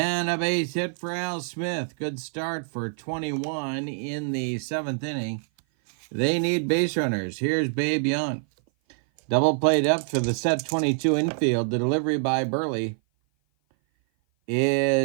a base hit for Al Smith. Good start for 21 in the 7th inning. They need base runners. Here's Babe Young. Double play depth for the set 22 infield. The delivery by Buehrle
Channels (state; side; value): silent; left; 56 dB below the other